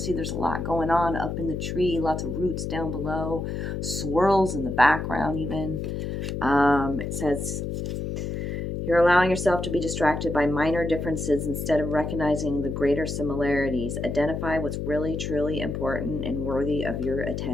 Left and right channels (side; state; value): left; noise; hum, 3 dB below the sound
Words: See, there's a lot going on up in the tree, lots of roots down below, swirls in the background even. It says, you're allowing yourself to be distracted by minor differences instead of recognizing the greater similarities. Identify what's really, truly important and worthy of your